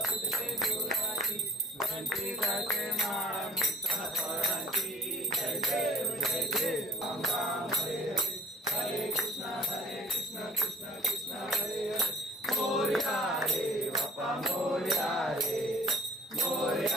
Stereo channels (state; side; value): normal; both; correlation 0.54